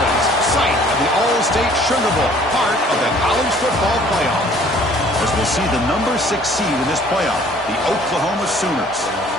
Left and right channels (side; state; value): both; normal; correlation 0.55